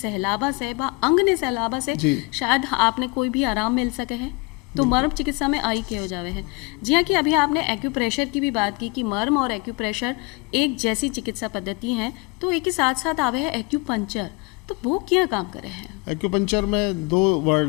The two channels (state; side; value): quieter; right; 28.0 dB